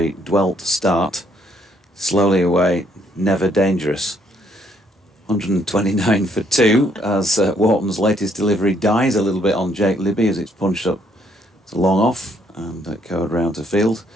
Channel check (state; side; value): normal; both; correlation 0.69